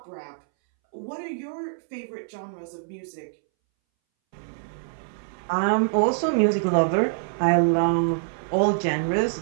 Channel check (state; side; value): silent; left; 62 dB below the other